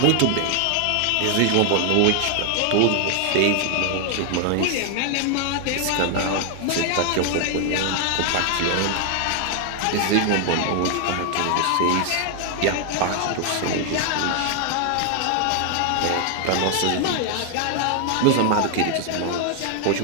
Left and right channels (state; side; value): different; both; correlation 0.00